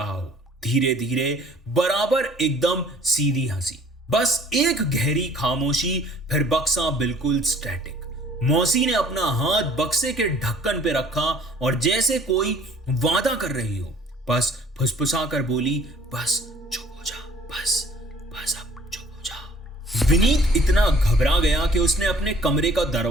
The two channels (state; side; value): normal; both; correlation 0.54